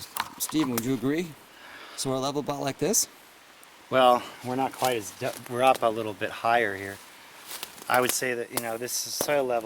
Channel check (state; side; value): identical; both; correlation 1.00